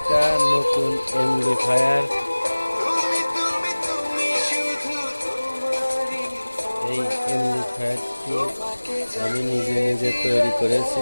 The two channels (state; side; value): inverted; both; correlation -1.00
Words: নতুন এমপ্লিফায়ার, এই এমপ্লিফায়ারটি আমি নিজে নিজে তৈরি